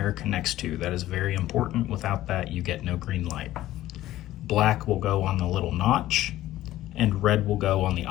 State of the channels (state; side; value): quieter; right; 14.8 dB